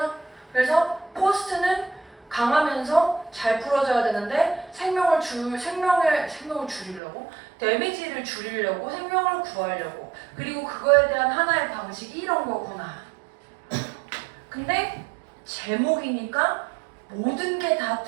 그래서 포스트는 강하면서 잘 풀어져야 되는데 생명을 줄이려고 데미지를 줄이려고 생명을 구하려고 그리고 그거에 대한 하나의 방식이 이런 거구나. 근데 제목이니까 모든 게 다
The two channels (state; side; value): drops out; left; at 7.0 s